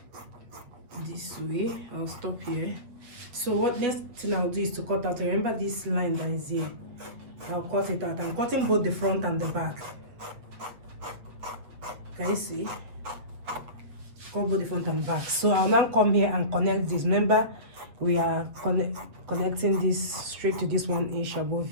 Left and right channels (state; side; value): late; left; 7.9 ms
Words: This way, I'll stop here. So what next thing I'll do is to cut out. Remember this line that is here. I'll cut it out. I'm cutting both the front and the back. Can you see? Cut both the front and back. So I'll now come here and connect this. Remember, we are connecting this straight to this 1 inch above